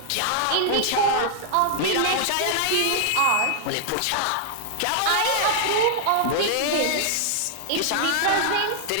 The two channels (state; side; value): different; both; correlation -0.01